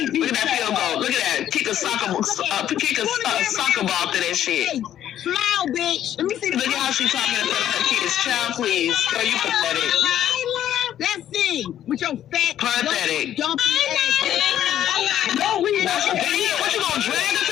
Look at that field goal. Look at that. Kick a soccer ball to that shit. Smile, bitch. Let me see. Look at how she's talking to her kids. Child, please. Girl, you pathetic. Let's see. With your fat, pathetic. dumpy ass. No, we not. What, you gonna drag her to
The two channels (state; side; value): quieter; right; 11.2 dB